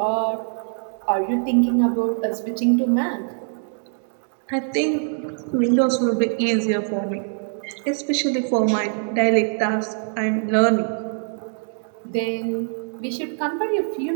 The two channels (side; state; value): left; silent; 58 dB below the other